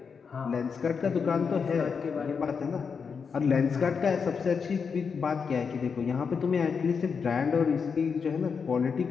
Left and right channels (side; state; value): right; quieter; 5.9 dB